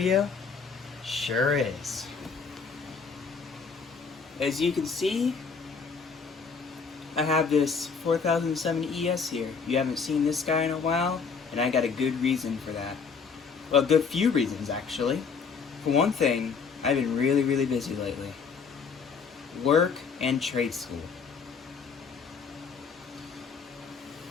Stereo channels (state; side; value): quieter; right; 5.5 dB